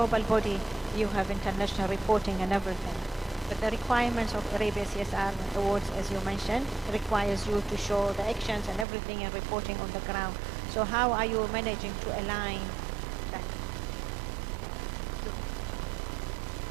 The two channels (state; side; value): drops out; left; at 8.8 s